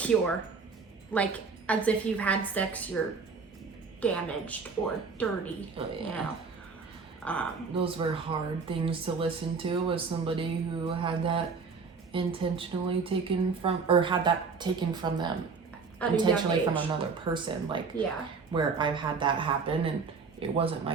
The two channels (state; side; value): quieter; left; 4.9 dB